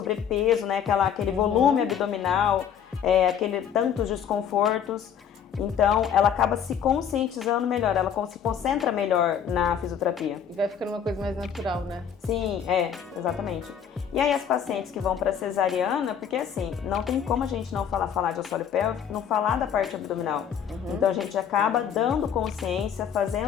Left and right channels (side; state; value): right; quieter; 8.3 dB